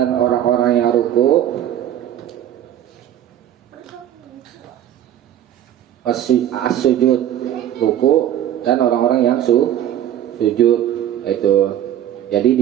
orang-orang yang ruku, as-sujud, ruku, dan orang-orang yang sujud. Itu jadi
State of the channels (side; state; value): left; quieter; 11.2 dB